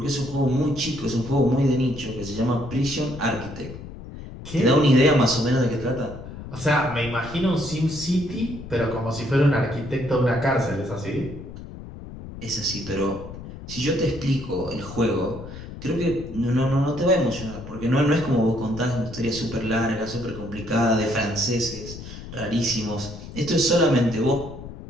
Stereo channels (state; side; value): noise; left; rumble, 12 dB below the sound